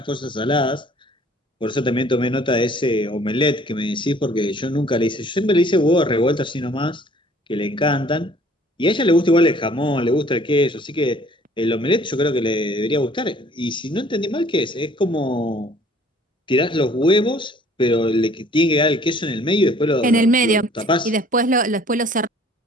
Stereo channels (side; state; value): both; normal; correlation 0.55